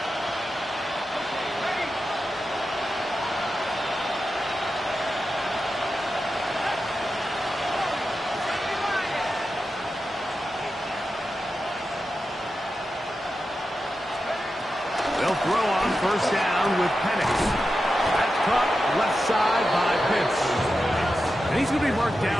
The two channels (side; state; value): both; normal; correlation 0.90